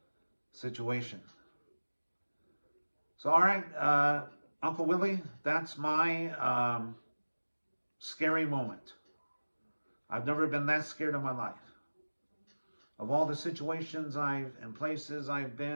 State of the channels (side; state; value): both; inverted; correlation -1.00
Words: situation. So, all right, Uncle Willie, that's my scary moment. I've never been that scared in my life. of all the situations and places I've